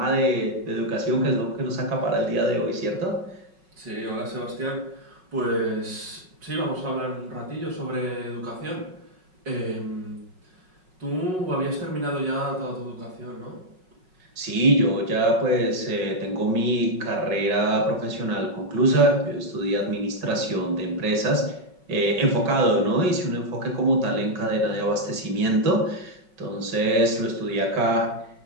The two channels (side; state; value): left; late; 5.4 ms